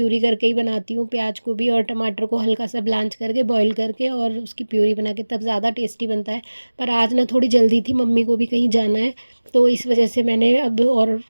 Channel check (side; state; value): both; inverted; correlation -1.00